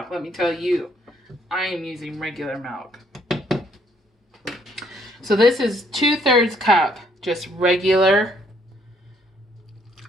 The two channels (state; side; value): normal; both; correlation 0.67